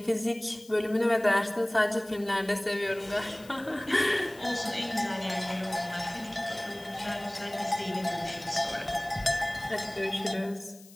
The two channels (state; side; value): noise; left; hiss, 22 dB below the sound